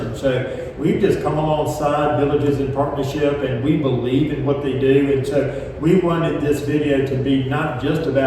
so we've just come alongside villages in partnership, and we believe in what they do. And so we wanted this video to be not just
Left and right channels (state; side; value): identical; both; correlation 1.00